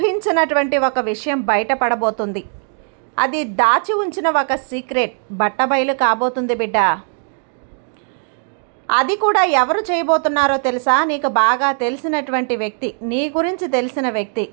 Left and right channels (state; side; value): silent; left; 56 dB below the other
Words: ఒక విషయం బయటపడబోతుంది. అది దాచి ఉంచిన ఒక సీక్రెట్ బట్టబయలు కాబోతుంది బిడ్డ. అది కూడా ఎవరు చేయబోతున్నారో తెలుసా? నీకు బాగా తెలిసినటువంటి వ్యక్తి, నీ గురించి తెలిసిన వ్యక్తి,